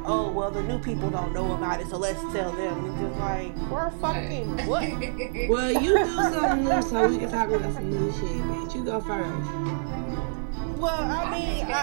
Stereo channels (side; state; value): left; silent; digital silence